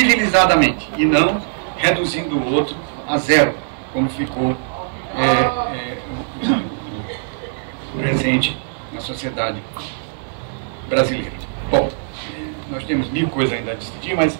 e não reduzindo o outro a zero, como ficou presente na sociedade brasileira. Bom, nós temos mil coisas ainda a discutir, mas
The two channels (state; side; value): silent; left; 64 dB below the other